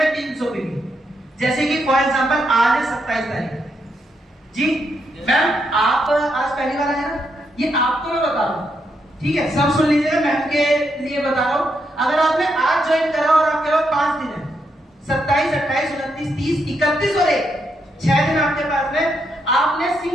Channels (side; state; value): both; normal; correlation 0.80